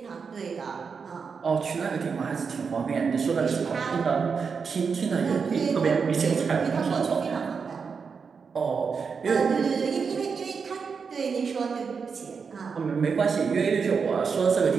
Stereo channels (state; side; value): quieter; left; 5.7 dB